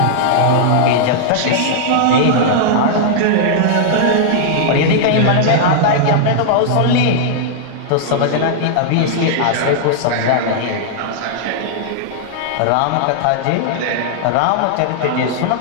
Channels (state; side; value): different; both; correlation -0.01